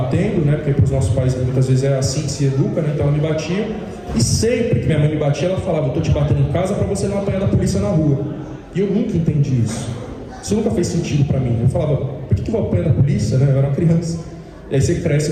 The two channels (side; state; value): both; identical; correlation 1.00